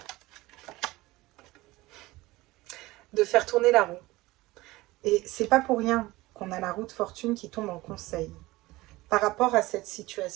De faire tourner la roue. Et c'est pas pour rien qu'on a la roue de fortune qui tombe en conseil. Par rapport à cette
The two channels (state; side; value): quieter; left; 19.6 dB